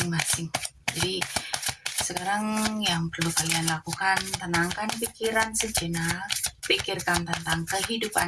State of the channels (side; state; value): both; identical; correlation 1.00